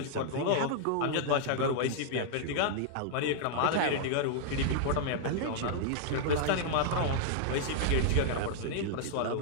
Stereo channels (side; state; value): both; different; correlation -0.01